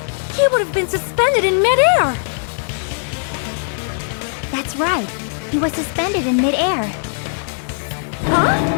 he would have been suspended in midair! That's right. He was suspended in midair. Huh?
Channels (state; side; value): silent; right; digital silence